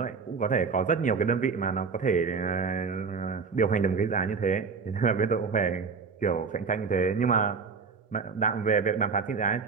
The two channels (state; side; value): quieter; left; 5.2 dB